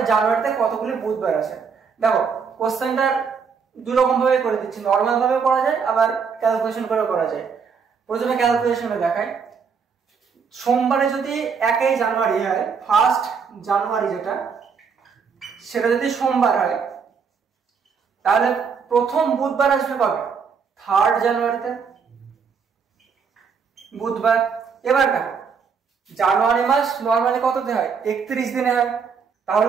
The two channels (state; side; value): quieter; left; 6.0 dB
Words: জানুয়ারিতে কতগুলি বুধবার আছে? দেখো কোশ্চেনটা দুই রকম ভাবে করে দিচ্ছি, নর্মাল ভাবে করা যায়, আবার ক্যালকুলেশন করে করা যায়। প্রথমে ক্যালকুলেশনে দেখাই। সোমবারে যদি 1 জানুয়ারি হয়, 1 জানুয়ারি যেটা, সেটা যদি সোমবার হয়, তাহলে প্রথম বুধবার আসবে কবে? 3 জানুয়ারিতে, বুধবার। এবার দেখো জানুয়ারি মাস নর্মালি কততে হয়? 31 দিনে হয়।